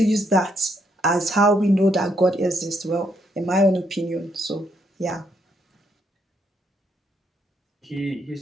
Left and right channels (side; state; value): both; normal; correlation 0.74